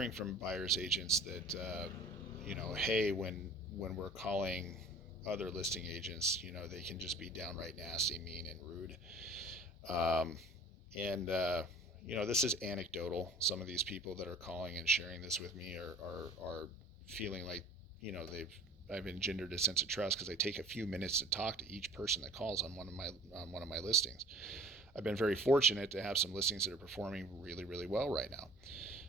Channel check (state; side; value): normal; both; correlation 0.47